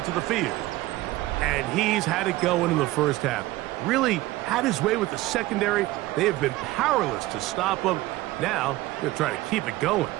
the field. And he's had it going in the 1st half. Really had his way with the secondary. They have been powerless to stop him. Now, they'll try to keep it going.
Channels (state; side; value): quieter; left; 17.8 dB